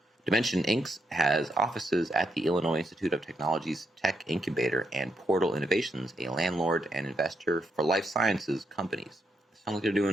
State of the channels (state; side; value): normal; both; correlation 0.80